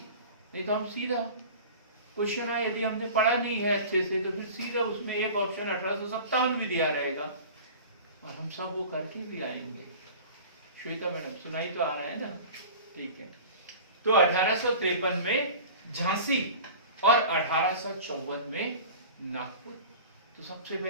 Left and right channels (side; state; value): both; inverted; correlation -0.39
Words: नहीं तो हम सीधा क्वेश्चन आए, यदि हमने पढ़ा नहीं है अच्छे से तो फिर सीधा उसमें एक ऑप्शन 1857 भी दिया रहेगा और हम सब वो करके भी आएंगे। श्वेता मैडम सुनाई तो आ रहा है ना, ठीक है। तो 1853 में झांसी और 1854 में नागपुर। तो सबसे